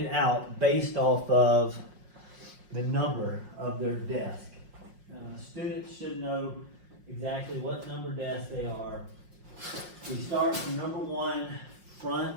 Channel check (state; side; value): late; left; 5.5 ms